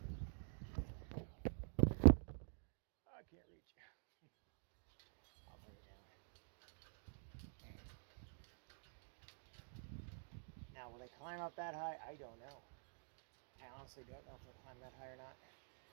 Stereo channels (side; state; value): left; silent; digital silence